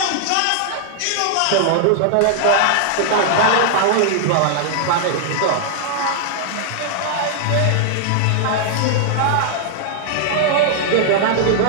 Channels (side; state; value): both; different; correlation -0.01